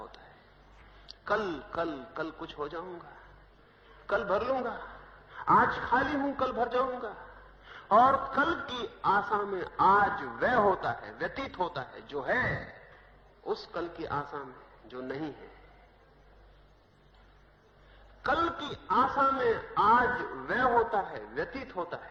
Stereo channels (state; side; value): identical; both; correlation 1.00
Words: है। कल कल कल कुछ हो जाऊंगा, कल भर लूंगा। आज खाली हूं, कल भर जाऊंगा। और कल की आशा में आज वह होता है, व्यतीत होता है जो है, उस कल की आशा में जो नहीं है। कल की आशा में आज वह होता है, व्यतीत होता